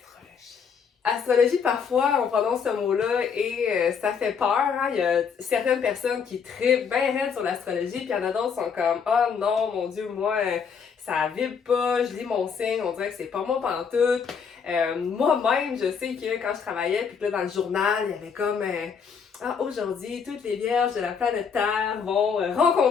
Astrologie, parfois, on prononce ce mot-là et ça fait peur. Hein? Il y a certaines personnes qui trippent bien raide sur l'astrologie, puis il y en a d'autres qui sont comme « Oh non, mon Dieu, moi, ça vibre pas, je lis mon signe, on dirait que c'est pas moi pantoute. » Moi-même, je sais que quand je travaillais, puis que là, dans le journal, il y avait comme aujourd'hui, toutes les vierges de la planète Terre vont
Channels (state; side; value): quieter; right; 6.4 dB